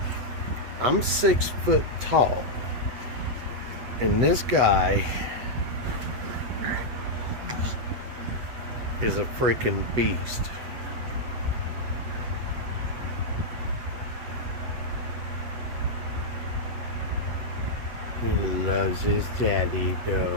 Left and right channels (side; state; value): left; late; 8.1 ms